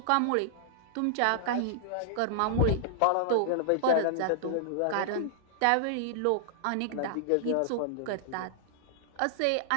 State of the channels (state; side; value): different; both; correlation -0.01